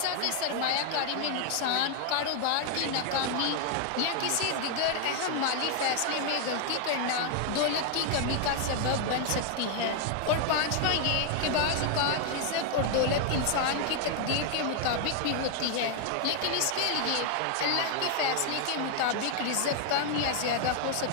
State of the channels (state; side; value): different; both; correlation 0.00